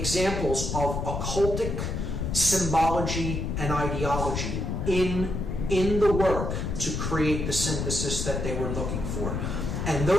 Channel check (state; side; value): noise; left; rumble, 2 dB below the sound